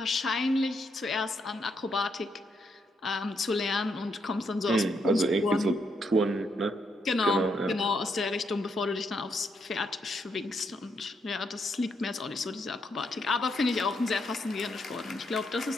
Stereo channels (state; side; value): normal; both; correlation 0.77